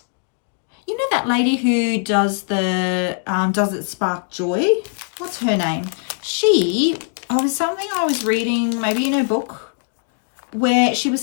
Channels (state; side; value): silent; right; 60 dB below the other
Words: know that lady who does the Does It Spark Joy? What's her name? Something I was reading, maybe in her book, where she was